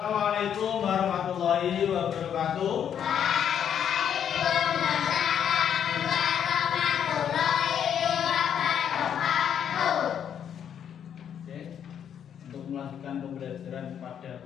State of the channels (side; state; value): right; quieter; 8.8 dB